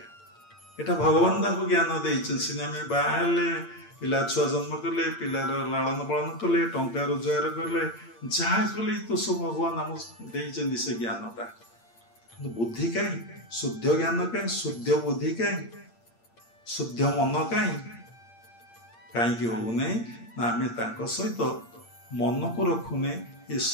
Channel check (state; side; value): late; right; 8.7 ms